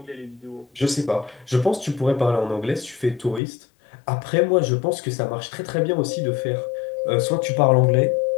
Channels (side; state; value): right; drops out; at 3.4 s